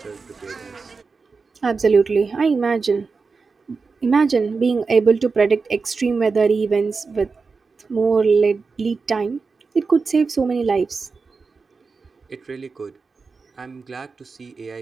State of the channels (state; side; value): quieter; left; 4.6 dB